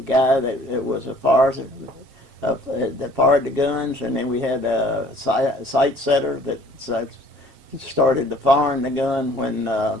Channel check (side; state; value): left; late; 7.4 ms